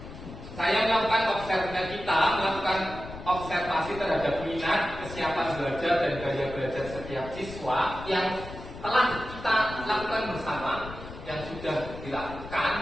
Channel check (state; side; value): noise; left; rumble, 12 dB below the sound